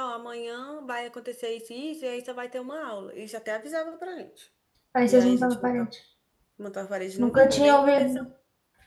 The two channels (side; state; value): both; identical; correlation 1.00